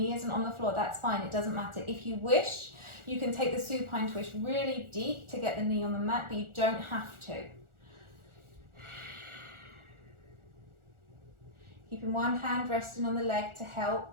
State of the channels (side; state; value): left; late; 1.4 ms